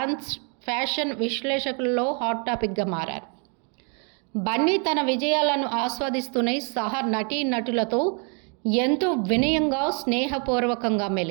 ఫ్యాషన్ విశ్లేషకుల్లో హాట్ టాపిక్గా మారారు. బన్నీ తన విజయాలను ఆస్వాదిస్తూనే సహా నటీనటులతో ఎంతో వినయంగా, స్నేహపూర్వకంగా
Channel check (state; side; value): quieter; left; 38.2 dB